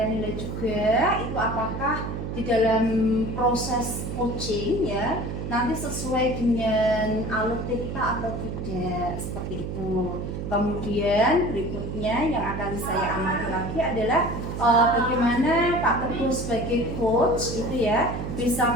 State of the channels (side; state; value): right; noise; hum, 5 dB below the sound